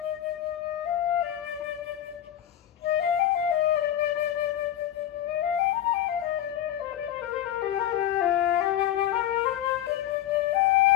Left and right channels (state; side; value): quieter; right; 11.7 dB